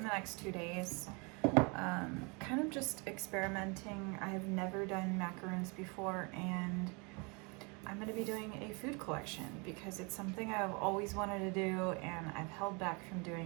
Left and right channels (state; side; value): quieter; left; 31.1 dB